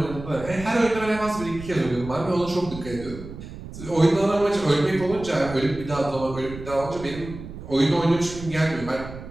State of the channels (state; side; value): noise; right; rumble, 12 dB below the sound